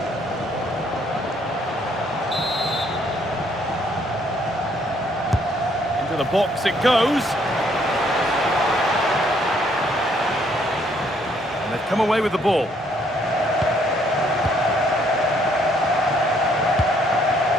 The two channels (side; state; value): both; normal; correlation 0.67